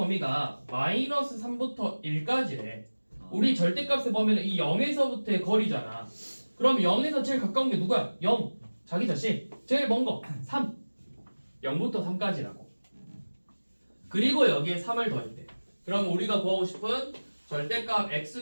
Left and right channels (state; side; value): inverted; both; correlation -1.00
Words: 마이너스 3부터 1까지래. 우리 절대값의 범위는 이 0에서부터의 거리잖아. 그럼 0에서 제일 가까운 게 누구야? 0. 자기 자신. 제일 먼 거 3. 0부터 3까지라고. 그리고 여기에 3을 더했대. 그럼 우리가 구하고 싶은 절대값